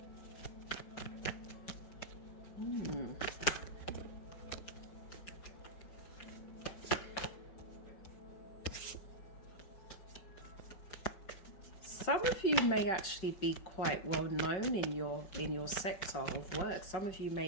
Some of you may actually be quite well known in your sector of work. Some of you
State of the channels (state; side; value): late; right; 5.4 ms